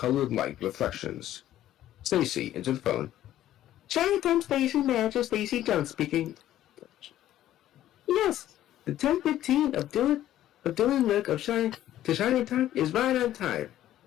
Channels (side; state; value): right; quieter; 12.9 dB